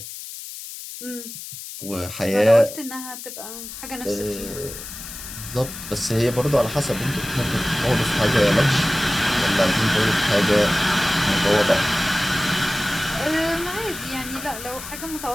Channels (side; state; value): left; noise; hiss, 11 dB below the sound